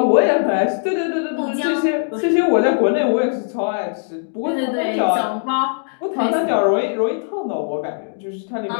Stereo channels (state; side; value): silent; right; digital silence